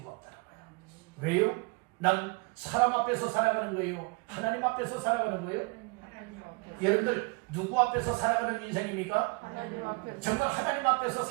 없더라고요. 왜요? 난 사람 앞에서 살아가는 거예요? 하나님 앞에서 살아가는 거예요? 여러분들 누구 앞에서 살아가는 인생입니까? 정말 하나님 앞에서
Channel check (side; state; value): left; quieter; 28.9 dB